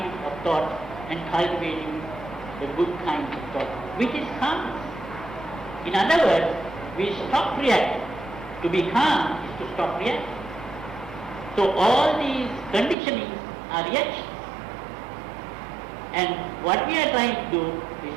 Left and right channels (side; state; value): left; drops out; at 13.0 s